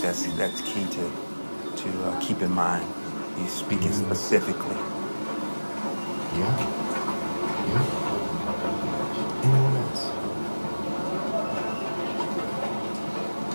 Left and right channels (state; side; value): inverted; both; correlation -1.00